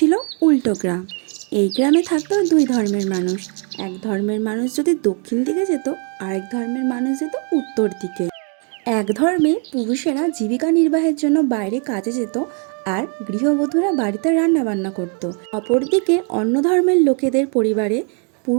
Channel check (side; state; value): left; quieter; 39.3 dB